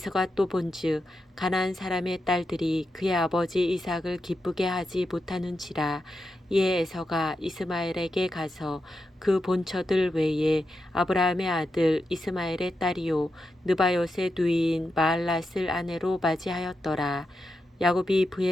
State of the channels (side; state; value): both; normal; correlation 0.87